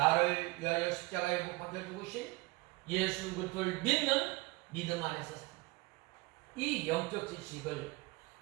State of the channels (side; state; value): left; quieter; 23.9 dB